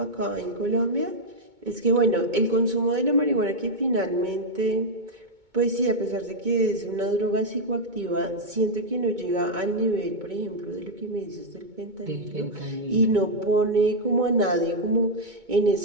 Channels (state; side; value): late; left; 2.2 ms